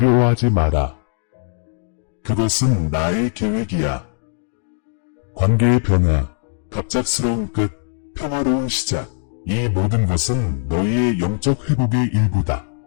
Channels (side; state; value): right; silent; digital silence